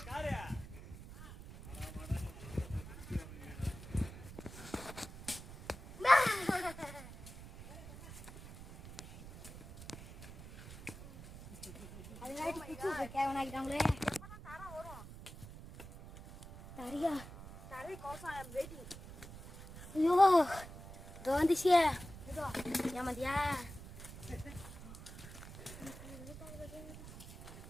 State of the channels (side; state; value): right; noise; rumble, 13 dB below the sound